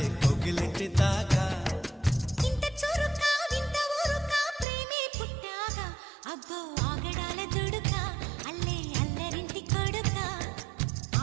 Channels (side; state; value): left; drops out; at 4.7 s